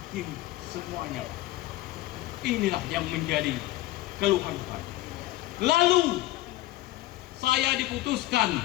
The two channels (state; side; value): quieter; right; 16.9 dB